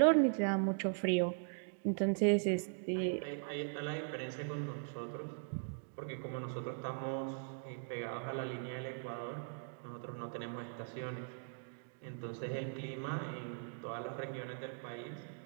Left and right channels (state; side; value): silent; left; digital silence